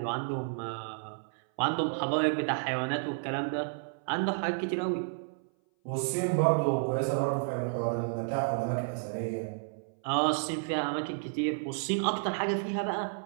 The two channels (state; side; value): silent; left; 57 dB below the other